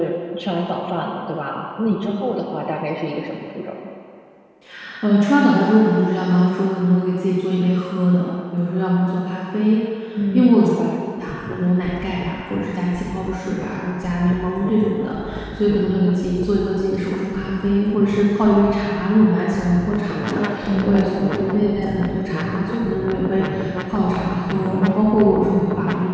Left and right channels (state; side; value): identical; both; correlation 1.00